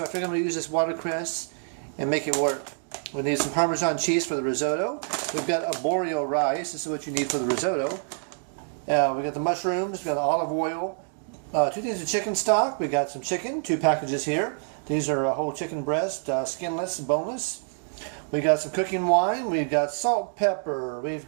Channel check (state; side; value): silent; left; digital silence